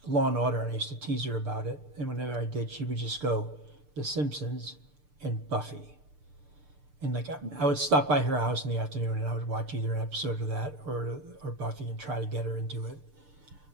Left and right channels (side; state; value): left; late; 6.8 ms